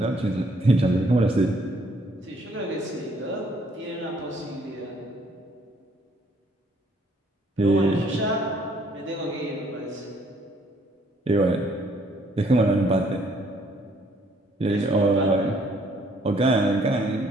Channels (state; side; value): normal; both; correlation 0.65